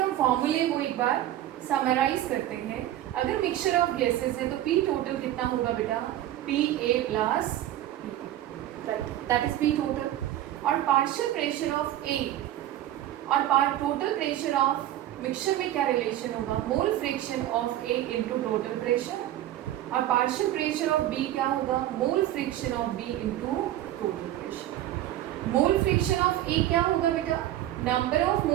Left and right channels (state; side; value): quieter; left; 13.2 dB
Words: फॉर्मूले को एक बार समराइज करते हैं. अगर मिक्सचर ऑफ गैसेस है तो P टोटल कितना होगा बेटा? PA plus that is P total. और पार्शियल प्रेशर ऑफ A और टोटल प्रेशर ऑफ मिक्सचर में क्या रिलेशन होगा? मोल fraction of A into total pressure. और पार्शियल प्रेशर ऑफ B क्या होगा? मोल fraction of B into total pressure. Mole fraction of A क्या होगा बेटा? Number of